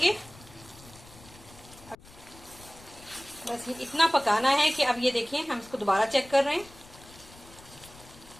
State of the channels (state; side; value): noise; left; rumble, 21 dB below the sound